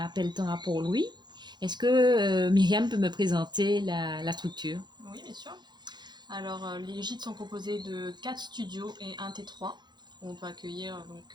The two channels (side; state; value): left; late; 0.21 ms